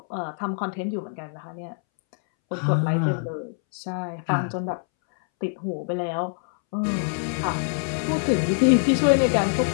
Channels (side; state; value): right; silent; 62 dB below the other